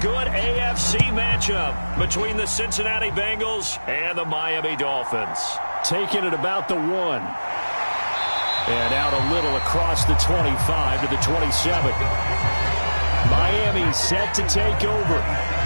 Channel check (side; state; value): both; inverted; correlation -1.00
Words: AFC matchup between the Cincinnati Bengals and the Miami Dolphins. Taking it about the 1. And out a little across the 25 to the 27. Miami set to take over.